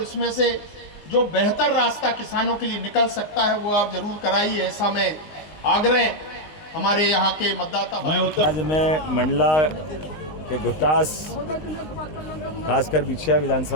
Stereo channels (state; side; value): late; right; 19 ms